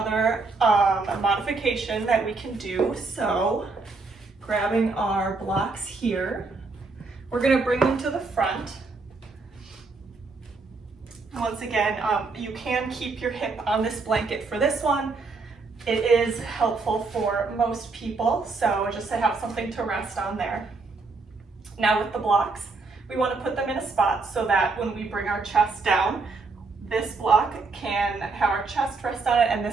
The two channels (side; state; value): left; quieter; 4.0 dB